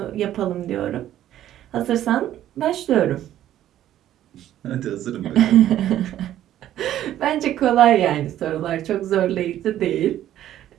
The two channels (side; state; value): left; quieter; 12.3 dB